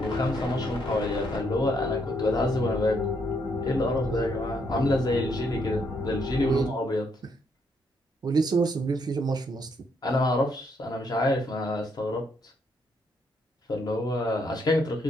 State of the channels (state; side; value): normal; both; correlation 0.73